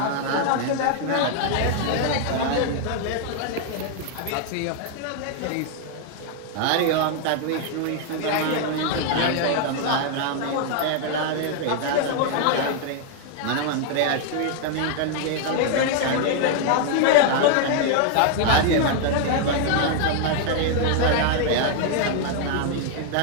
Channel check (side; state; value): both; different; correlation 0.00